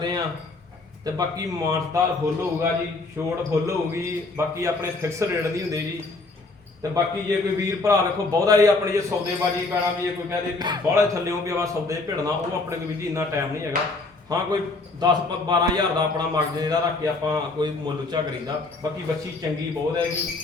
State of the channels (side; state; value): right; quieter; 3.4 dB